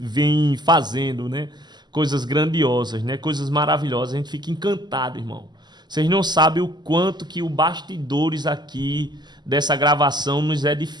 fazendo, né? Coisas grandiosas, né? Coisas maravilhosas, a gente fica encantado, irmão. Vocês não sabem o quanto que o bastidores aqui dessa gravação nos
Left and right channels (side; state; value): left; late; 0.21 ms